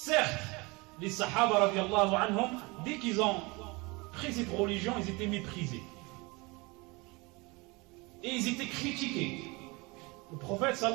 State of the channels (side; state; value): left; quieter; 25.8 dB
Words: les Sahaba radiallahu anhum, dès qu'ils ont pris cette religion, ils étaient méprisés. Et ils étaient critiqués. Le prophète